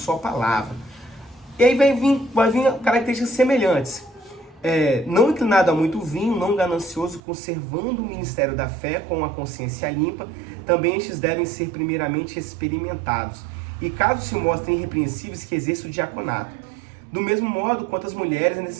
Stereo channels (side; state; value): left; drops out; at 7.2 s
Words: palavra. E aí vai vir características semelhantes. Não inclinado a muito vinho, não ganancioso, conservando o ministério da fé com a consciência limpa. Também estes devem ser primeiramente experimentados. E caso se mostrem irrepreensíveis, que exerçam o diaconato. Do mesmo modo, quanto às mulheres, é